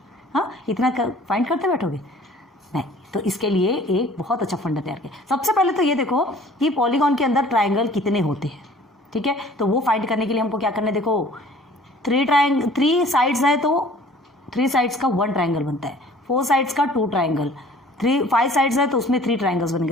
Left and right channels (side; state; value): both; normal; correlation 0.50